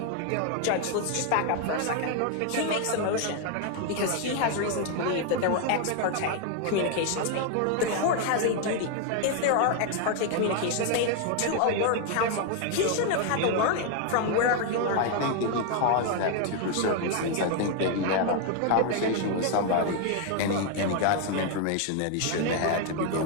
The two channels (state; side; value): different; both; correlation 0.01